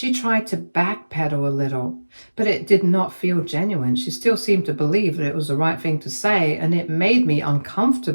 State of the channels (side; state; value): both; inverted; correlation -1.00